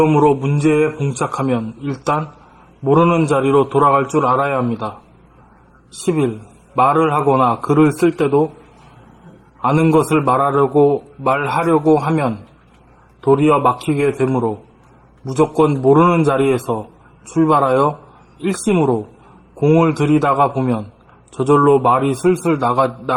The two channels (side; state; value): both; identical; correlation 1.00